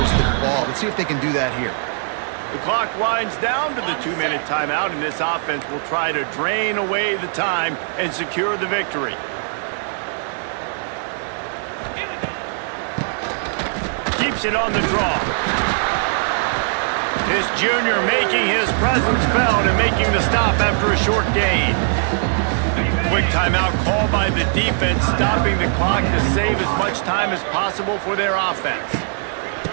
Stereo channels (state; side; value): silent; left; 65 dB below the other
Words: the ball. Let's see if they can do that here. The clock winds down to the 2-minute timeout, and this offense will try to drain away the time and secure the victory. Keeps it on the draw. This junior making his presence felt and making the stop after a short gain. Quick timeout called by the defense, stopping the clock to save as much time as possible for their offense.